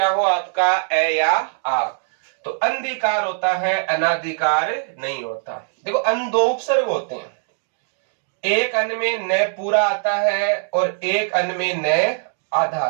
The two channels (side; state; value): left; silent; 57 dB below the other